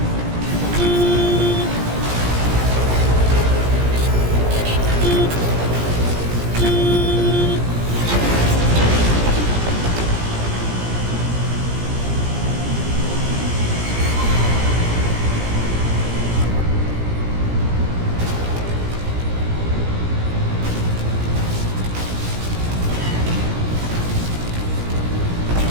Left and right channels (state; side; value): late; left; 17 ms